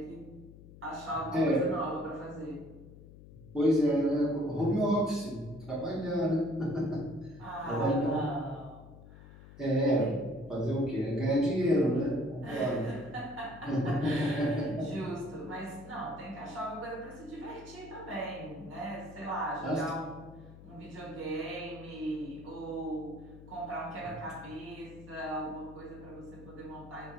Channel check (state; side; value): noise; left; hum, 18 dB below the sound